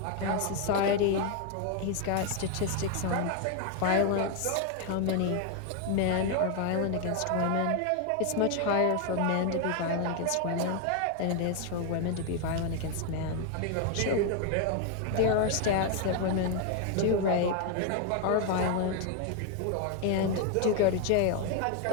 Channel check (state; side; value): different; both; correlation 0.01